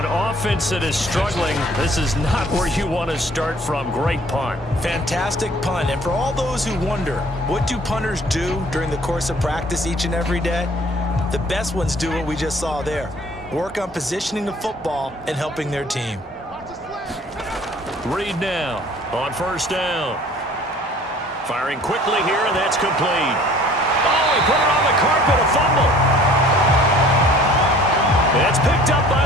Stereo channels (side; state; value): both; normal; correlation 0.52